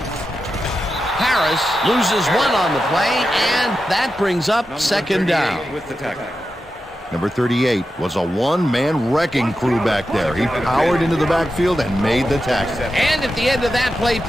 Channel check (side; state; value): both; normal; correlation 0.90